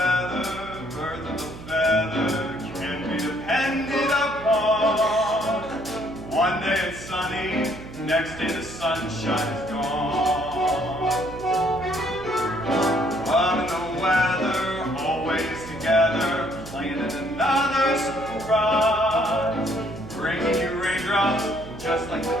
birth of a feather, can be depended upon. One day it's sunny, next day the sunshine is gone. Love and the weather, always together, planning another surprise, bringing you raindrops just like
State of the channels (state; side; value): noise; right; hum, 14 dB below the sound